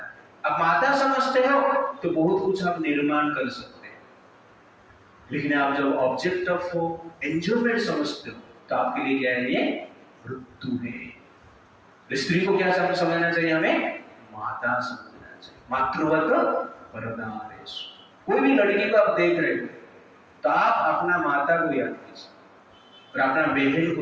है। अब माता समझते हो तो बहुत कुछ आप निर्माण कर सकते हैं, लेकिन आप जब ऑब्जेक्ट ऑफ एंजॉयमेंट समझते हो तो आपके लिए क्या है? ये मृत्यु है। स्त्री को क्या समझना चाहिए? हमें माता समझना चाहिए। मातृवत वरदानेषु। कोई भी लड़की को आप देख रहे हो तो आप अपना माता को याद कीजिए और अपना बहन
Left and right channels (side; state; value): both; identical; correlation 1.00